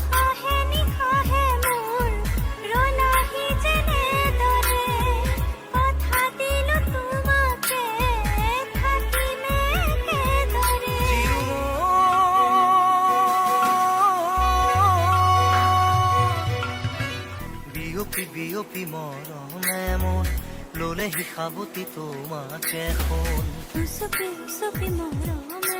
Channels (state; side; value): identical; both; correlation 1.00